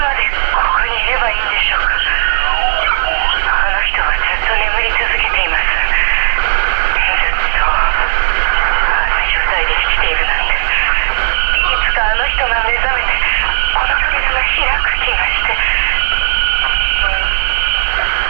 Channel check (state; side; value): silent; left; digital silence